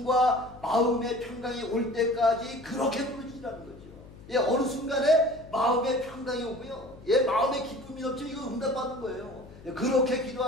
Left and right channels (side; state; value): left; noise; hum, 19 dB below the sound